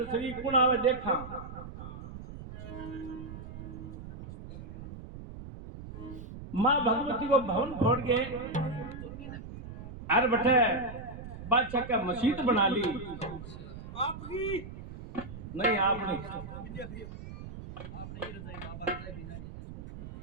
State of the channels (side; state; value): right; noise; rumble, 11 dB below the sound